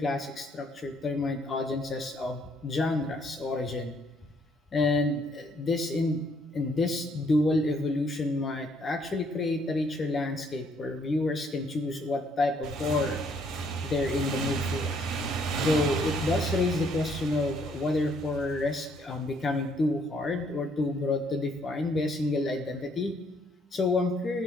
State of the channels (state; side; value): normal; both; correlation 0.67